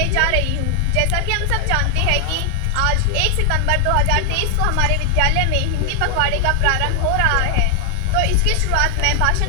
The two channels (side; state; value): both; different; correlation 0.00